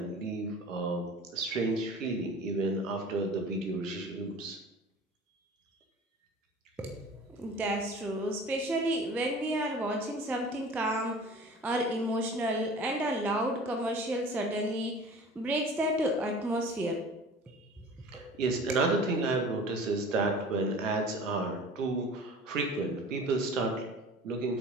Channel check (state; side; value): normal; both; correlation 0.42